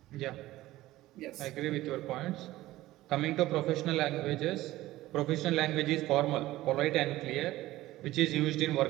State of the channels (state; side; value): quieter; left; 16.5 dB